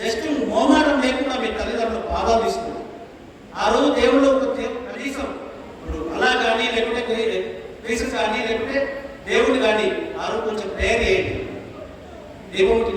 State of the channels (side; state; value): both; identical; correlation 1.00